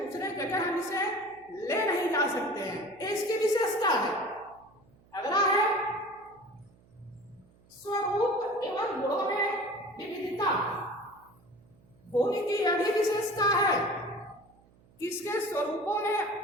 जगह हम इसे ले नहीं जा सकते हैं, ये इसकी विशेषता है। अगला है स्वरूप एवं गुणों में विविधता। भूमि की यह भी विशेषता है कि इसके स्वरूपों में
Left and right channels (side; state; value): right; noise; hum, 29 dB below the sound